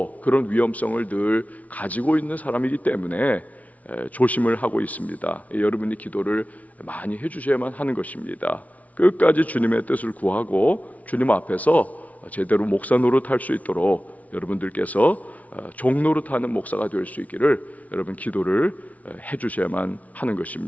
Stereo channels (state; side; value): late; right; 0.070 ms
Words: 그런 위험성을 늘 가지고 있는 사람이기 때문에 조심을 하고 있습니다. 여러분이 기도를 많이 해주셔야만 하는 것입니다. 끝까지 주님의 뜻을 구하고 주님 앞에서 제대로 목사 노릇할 수 있도록 여러분들께서 종 노릇하는 목사가 될 수 있기를 여러분 기도를 해주셔야만 하는